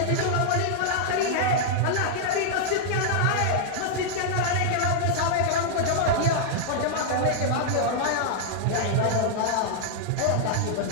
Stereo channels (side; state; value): both; different; correlation -0.01